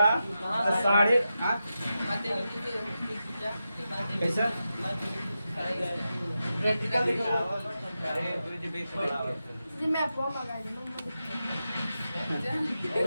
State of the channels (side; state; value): both; inverted; correlation -0.90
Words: तो साढ़े कैसा जी मैं आपको मंगा